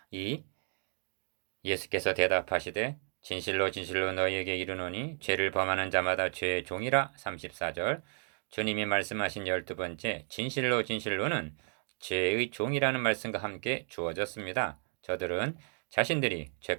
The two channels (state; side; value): silent; left; 56 dB below the other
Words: 2. 예수께서 대답하시되 진실로 진실로 너희에게 이르노니 죄를 범하는 자마다 죄의 종이라. 34절 주님이 말씀하신 12번째 진실로 진실로는 죄의 종이라는 말씀과 함께 주어졌습니다. 저들은 자신들이